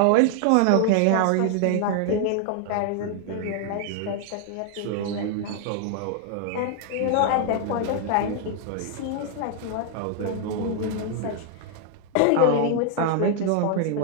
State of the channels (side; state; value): both; different; correlation 0.00